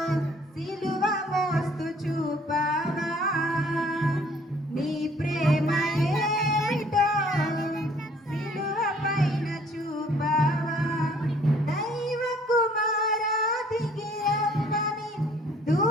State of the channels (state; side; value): normal; both; correlation 0.59